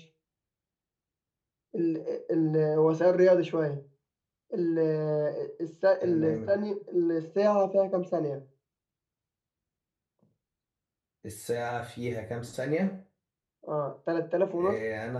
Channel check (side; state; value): both; identical; correlation 1.00